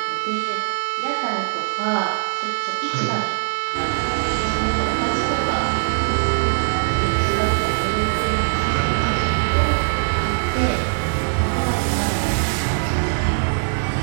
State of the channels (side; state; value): left; silent; 58 dB below the other